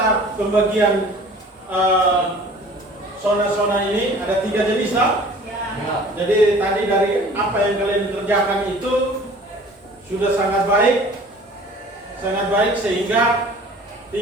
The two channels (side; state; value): both; normal; correlation 0.47